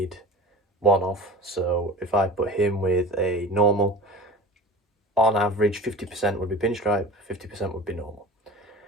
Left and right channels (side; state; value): both; normal; correlation 0.38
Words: one of. So if I put him with a normal, on average 50% would be pinstripe, 50% would be normal.